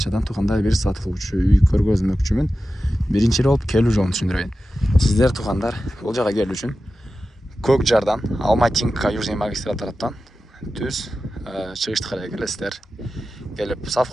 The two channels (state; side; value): normal; both; correlation 0.93